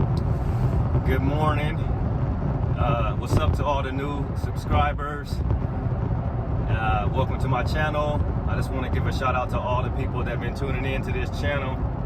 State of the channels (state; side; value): identical; both; correlation 1.00